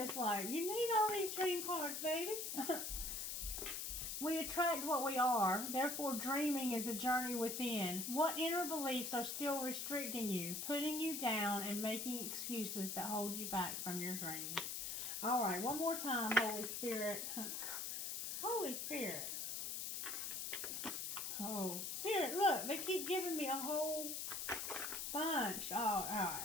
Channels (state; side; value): noise; left; hiss, 3 dB below the sound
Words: like, you need all these dream cards, baby. We attract what we are. Therefore, dreaming is a journey within. What inner beliefs are still restricting you, putting you down, and making excuses that hold you back from your dreams? All right, one more time, Holy Spirit. Holy Spirit. Oh, Spirit, look, they keep giving me a whole bunch. Oh, all right,